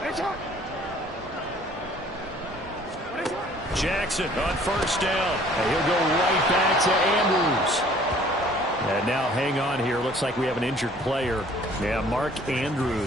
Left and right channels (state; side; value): normal; both; correlation 0.55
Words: Jackson on first down. And he'll go right back to Andrews. And now hang on here. Looks like we have an injured player. Yeah, Mark